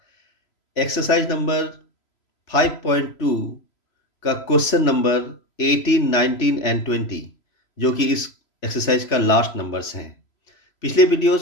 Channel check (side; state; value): right; late; 3.0 ms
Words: एक्सरसाइज नंबर 5.2 का क्वेश्चन नंबर 18, 19 एंड 20, जो कि इस एक्सरसाइज का लास्ट नंबर्स हैं। पिछले